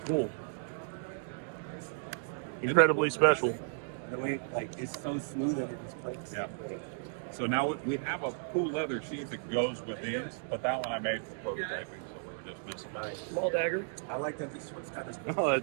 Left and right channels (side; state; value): left; silent; digital silence